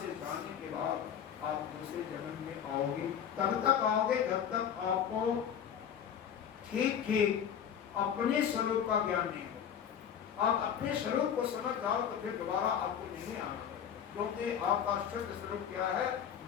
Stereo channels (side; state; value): right; quieter; 8.6 dB